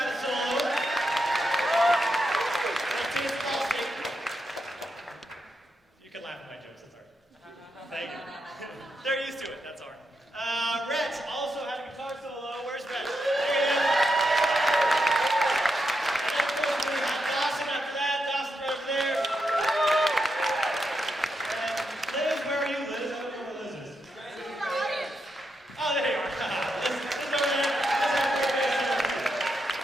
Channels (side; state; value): both; normal; correlation 0.84